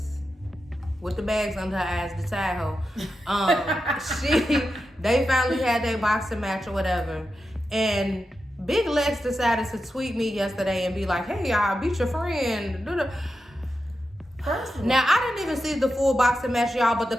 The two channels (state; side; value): normal; both; correlation 0.89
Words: With the bags under her eyes, the tie hoe. They finally had their boxing match or whatever. And Big Lex decided to tweet me yesterday and be like, hey, I beat your friend. Now, I didn't even see the full boxing match, y'all, but the